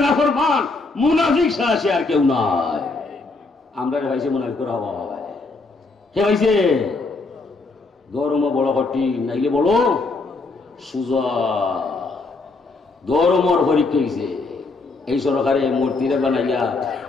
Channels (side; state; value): right; quieter; 3.7 dB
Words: নাফরমান মুনাফিক ছাড়া সে আর কেউ নাই। আমরা ভাইছে মুনাফিকের হওয়া হয় কে ভাইছে ধর্ম বড় কঠিন নাইলে বড় সুজা ধর্মর পরীক্ষা হয়েছে এই সরকারে মূর্তিরে বানাইয়া